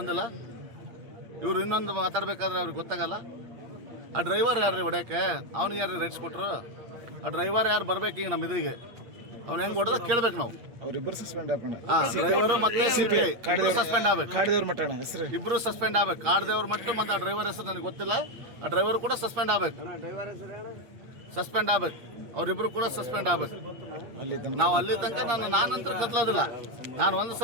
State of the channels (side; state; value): left; late; 8.5 ms